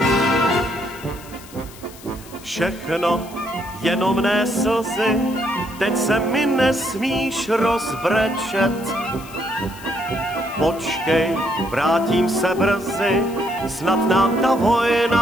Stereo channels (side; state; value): left; noise; hiss, 19 dB below the sound